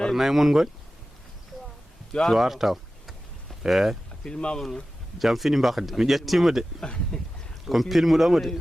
mon goni cuwar taw jam fini mbakde mi ƴettima de komi pilmuɗomo de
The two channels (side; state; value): both; normal; correlation 0.95